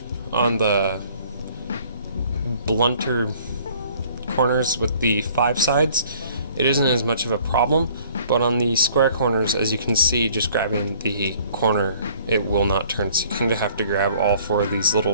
on the blunter corners with the 5 sides, it isn't as much of a problem, but on the square corners, as you can see, just grabbing the corner, it will not turn. So you kind of have to grab all 4 of these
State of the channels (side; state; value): both; inverted; correlation -0.56